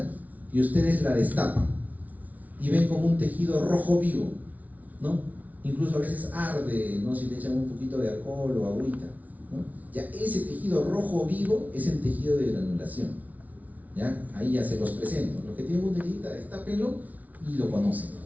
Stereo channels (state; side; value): late; left; 0.073 ms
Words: y ustedes la destapan y ven como un tejido rojo vivo, ¿no? Incluso a veces arde, ¿no? Si le echan un poquito de alcohol o agüita, ¿no? Ya ese tejido rojo vivo es el tejido de granulación, ¿ya? Ahí ya se los presento. Los que tienen una heridita, destápenlo y lo conocen,